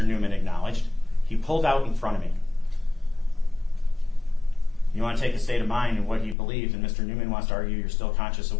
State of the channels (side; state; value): right; drops out; at 6.4 s